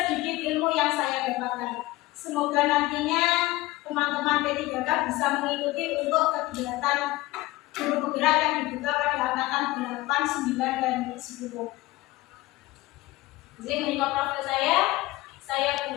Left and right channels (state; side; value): quieter; right; 19.1 dB